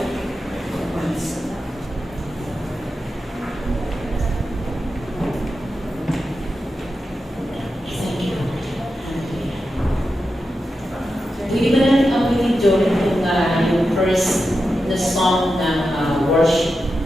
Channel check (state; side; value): normal; both; correlation 0.89